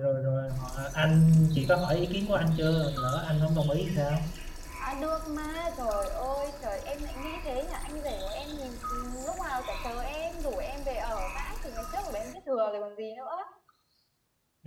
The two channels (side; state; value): both; identical; correlation 1.00